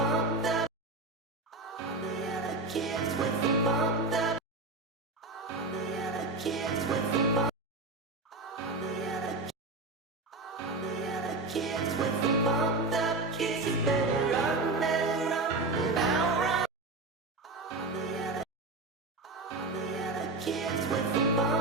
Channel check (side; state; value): left; quieter; 3.3 dB